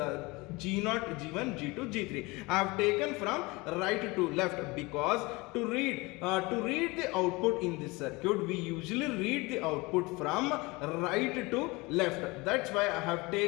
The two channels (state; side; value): quieter; right; 24.1 dB